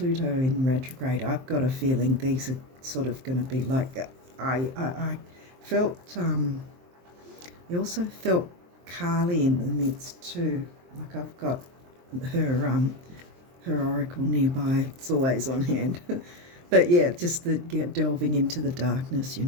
in retrograde, I've got a feeling these are sort of going to be like. I felt. I also felt Carly in the midst too. Like I've got her oracle nearby. It's always on hand. But yeah, just delving into the darkness, you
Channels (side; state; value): left; late; 23 ms